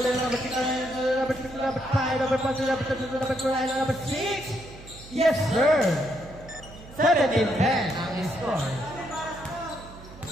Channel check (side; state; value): right; noise; hum, 18 dB below the sound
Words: number 6. Number 6. Number 5. Number 5. Number 2. Number 3. Number 6. Yes, sir. 17-10 ang score.